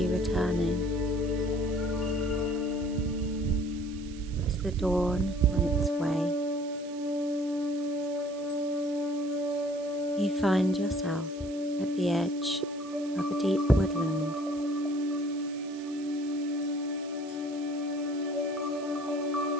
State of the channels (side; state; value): right; noise; hiss, 20 dB below the sound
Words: returning. Is the dawn on its way? You find yourself at the edge of a deep woodland.